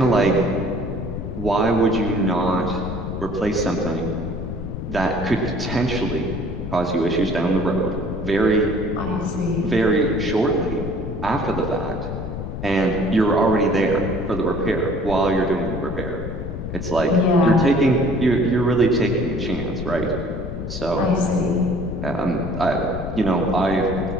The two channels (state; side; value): noise; left; rumble, 6 dB below the sound